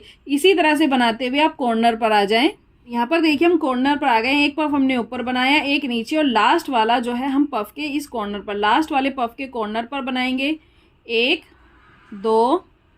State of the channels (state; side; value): identical; both; correlation 1.00